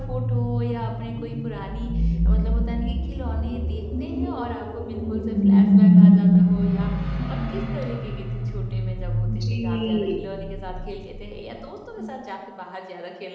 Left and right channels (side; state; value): both; identical; correlation 1.00